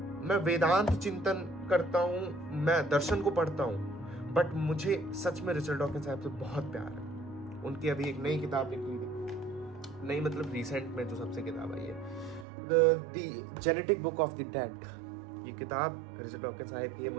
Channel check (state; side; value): drops out; left; at 12.5 s